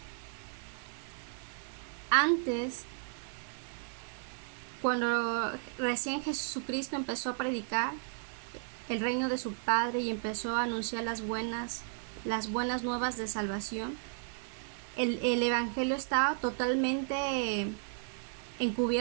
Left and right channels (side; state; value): left; silent; 55 dB below the other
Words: Antes, Cuando recién Jesucristo empezó a predicar el reino de su Padre y empezó a anunciar las buenas nuevas de salvación, el Evangelio estaba totalmente